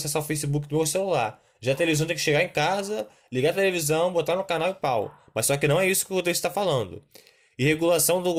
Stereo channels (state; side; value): identical; both; correlation 1.00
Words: o Facebook do meu celular. Já a televisão tem que chegar em casa, ligar a televisão, botar no canal e pau. Mas só que não é isso que o texto está falando. E regulação